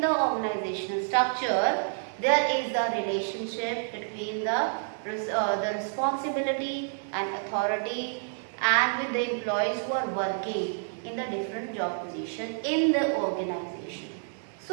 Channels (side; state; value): left; silent; digital silence